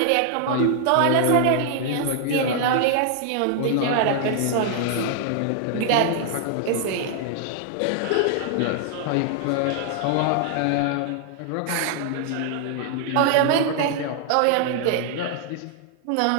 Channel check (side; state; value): both; different; correlation 0.00